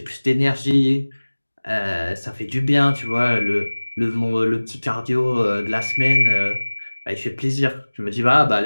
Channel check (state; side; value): inverted; both; correlation -1.00